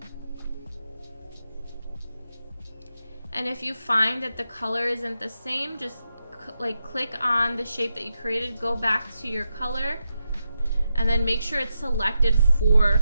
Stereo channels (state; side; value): inverted; both; correlation -0.87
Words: And if you find that the color isn't the same, just click on the shape that you created, go back to your color, and then make sure it's selected